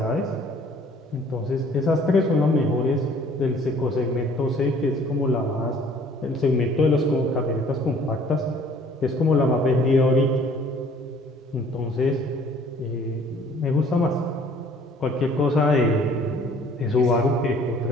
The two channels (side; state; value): both; normal; correlation 0.55